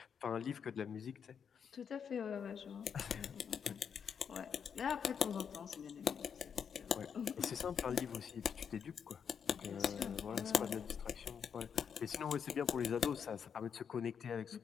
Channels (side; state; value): right; quieter; 7.2 dB